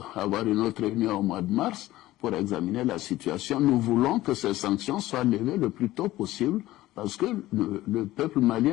avoir une autre réunion au mois de mars pour examiner la situation. Nous voulons que ces sanctions soient levées le plus tôt possible parce que le peuple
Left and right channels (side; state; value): right; quieter; 16.3 dB